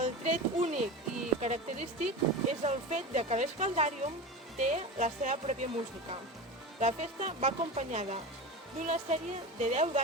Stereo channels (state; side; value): normal; both; correlation 0.27